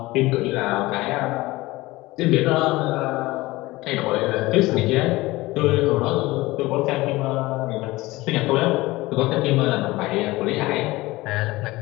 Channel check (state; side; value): quieter; right; 19.8 dB